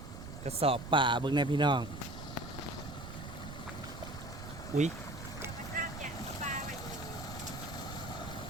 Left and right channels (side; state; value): right; noise; rumble, 10 dB below the sound